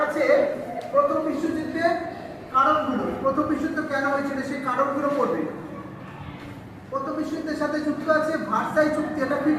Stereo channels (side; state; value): both; identical; correlation 1.00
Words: আছে প্রথম বিশ্বযুদ্ধের কারণগুলো, প্রথম বিশ্বযুদ্ধ কেন হয়েছিল সেই কারণগুলো পড়বে। প্রথম বিশ্বযুদ্ধের সাথে যুক্ত আছে ভার্সাই চুক্তি, এটা